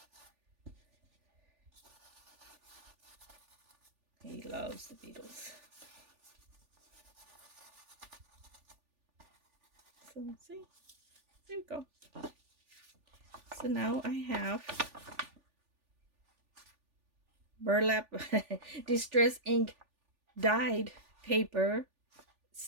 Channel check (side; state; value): left; late; 3.4 ms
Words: He loves the Beatles. So see, there we go. So now I have burlap distress ink dyed paper